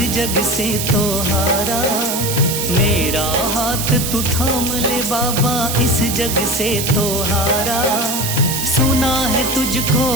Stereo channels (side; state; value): right; noise; hiss, 3 dB below the sound